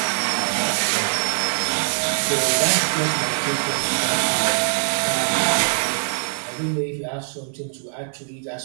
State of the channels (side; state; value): left; silent; digital silence